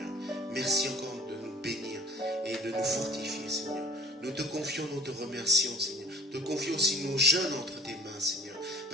Merci encore de nous bénir et de nous fortifier, Seigneur. Nous te confions, nous te remercions, Seigneur. Nous te confions aussi nos jeunes entre tes mains, Seigneur,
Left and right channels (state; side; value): normal; both; correlation 0.46